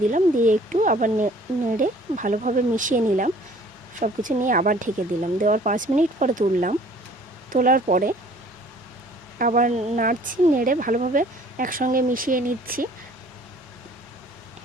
দিলাম। দিয়ে একটু আবার নেড়ে ভালোভাবে মিশিয়ে নিলাম। সব কিছু নিয়ে আবার ঢেকে দিলাম। দেওয়ার 5 মিনিট পরে তুললাম। তোলার পরে আবার নাড়ছি, নেড়ে ভালোভাবে একসঙ্গে মিশিয়ে নিচ্ছি।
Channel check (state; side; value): normal; both; correlation 0.54